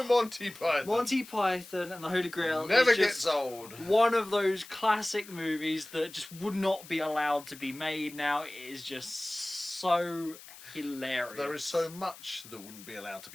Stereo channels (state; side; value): noise; left; hiss, 18 dB below the sound